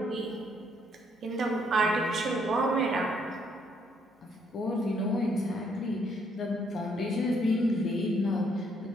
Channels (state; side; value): normal; both; correlation 0.70